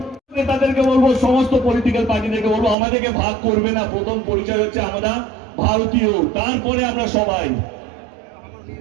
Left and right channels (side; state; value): left; drops out; at 2.8 s